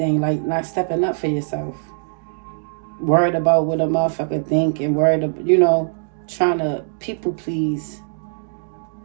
like not stepping up for yourself. Worried about what a motherfucker think, and worried about, you know, trying to people please.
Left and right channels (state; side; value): silent; left; digital silence